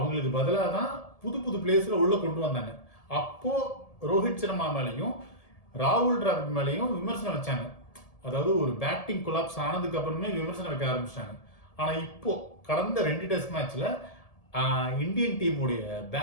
பதிலாக தான் புது புது பிளேயர்ஸ்ல உள்ள கொண்டு வந்தாங்க. அப்போ ரோஹித் சர்மா மேலையும் ராகுல் டிராவிட் மேலையும் விமர்சனம் வச்சாங்க. அதாவது ஒரு பேட்டிங் கொலாப்ஸ் ஆனதுக்கு அப்புறமே விமர்சனம் வைக்க ஆரம்பிச்சிட்டாங்க. ஆனால் இப்போ கடந்த 2 டெஸ்ட் மேட்ச்ல இந்தியன் டீமுடைய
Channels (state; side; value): late; right; 1.7 ms